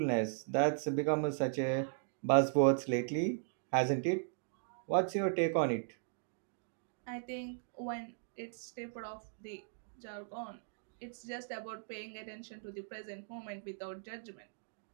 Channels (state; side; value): silent; left; digital silence